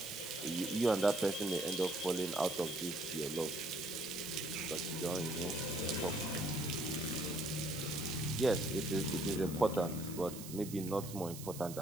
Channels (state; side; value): noise; right; hiss, 12 dB below the sound